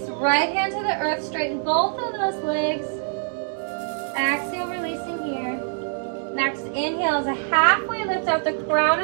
right hand to the earth. Straighten both of those legs. Exhale, releasing here. Next inhale is a halfway lift out the crown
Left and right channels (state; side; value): silent; left; digital silence